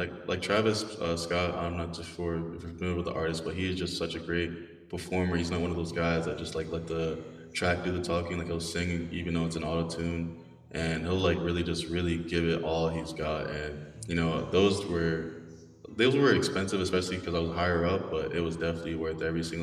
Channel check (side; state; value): both; identical; correlation 1.00